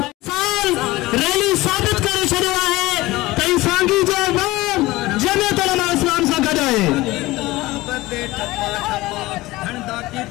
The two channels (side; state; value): right; quieter; 19.3 dB